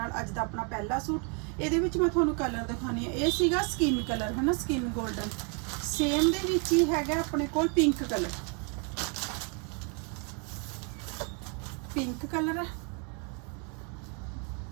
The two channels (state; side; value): quieter; left; 36.8 dB